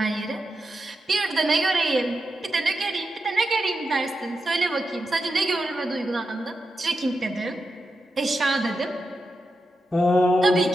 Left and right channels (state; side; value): normal; both; correlation 0.88